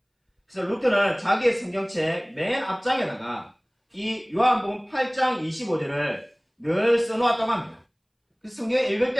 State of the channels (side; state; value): both; identical; correlation 1.00